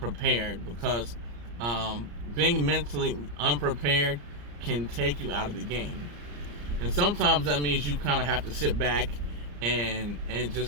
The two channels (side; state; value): left; late; 34 ms